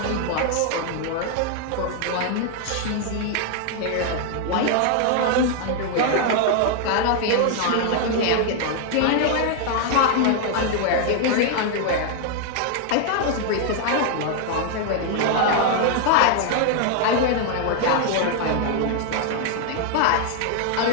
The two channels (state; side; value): different; both; correlation 0.00